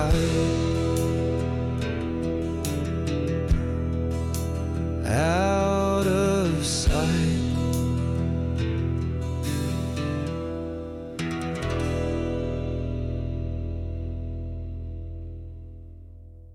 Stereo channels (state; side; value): identical; both; correlation 1.00